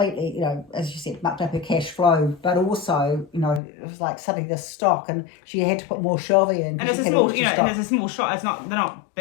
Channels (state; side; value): drops out; right; at 3.6 s